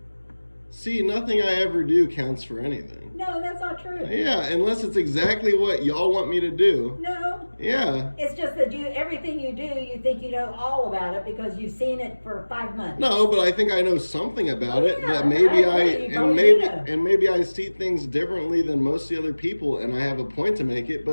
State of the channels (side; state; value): both; inverted; correlation -1.00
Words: See, nothing I ever do counts for anything. No, that's not true. Yeah, unless it's exactly what y'all want me to do. No. Yeah. It's just that everything you do, you think you know all about it because you've seen it for 5 months. No, but I think I know something about it Yeah, that maybe I agree, you probably do. maybe I see things differently than most of the other people, and I have a point to make it.